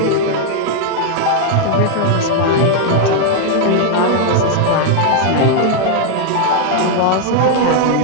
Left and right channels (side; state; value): both; different; correlation 0.00